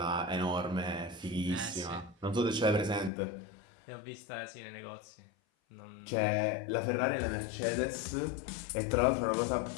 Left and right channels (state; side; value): drops out; right; at 3.1 s